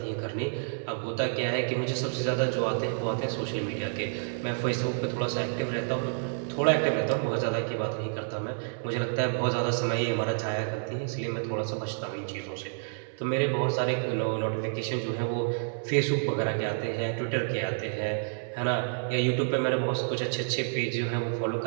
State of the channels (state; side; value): silent; left; digital silence